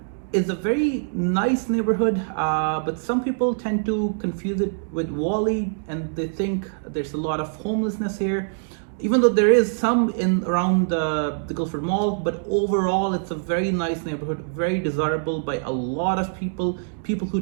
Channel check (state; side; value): silent; left; digital silence